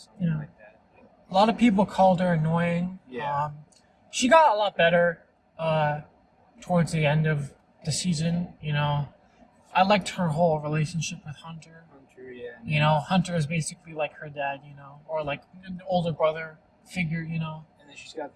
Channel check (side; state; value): both; identical; correlation 1.00